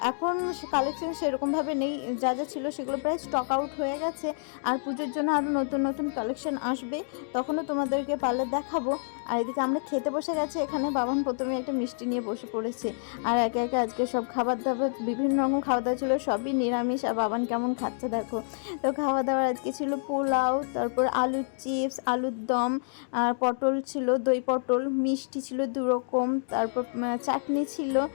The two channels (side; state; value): right; silent; digital silence